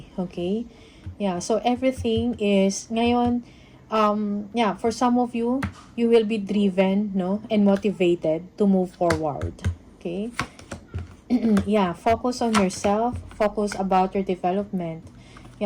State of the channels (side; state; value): both; identical; correlation 1.00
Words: Okay? Yeah. So, everything is, ngayon, for some of you, you will be driven, no? And motivated to move forward. Okay? Yeah. Focus on yourself. Focus about your development.